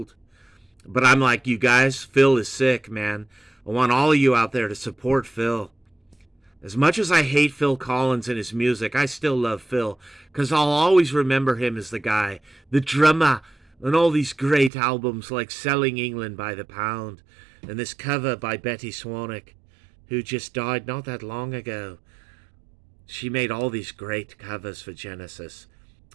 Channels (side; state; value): left; drops out; at 14.7 s